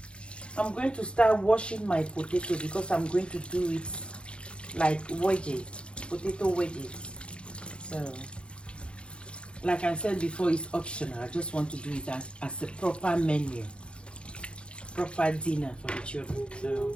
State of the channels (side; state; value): right; late; 0.057 ms